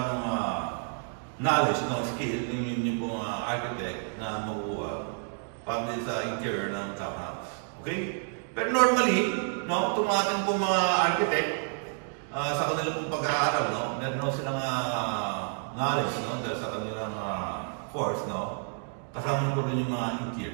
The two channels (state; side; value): silent; left; 58 dB below the other